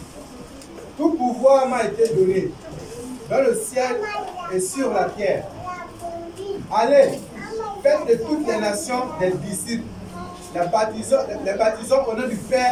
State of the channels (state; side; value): identical; both; correlation 1.00